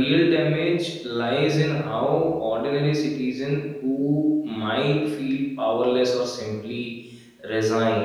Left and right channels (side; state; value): both; identical; correlation 1.00